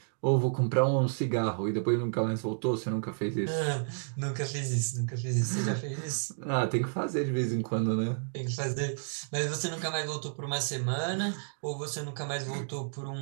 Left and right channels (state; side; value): silent; left; digital silence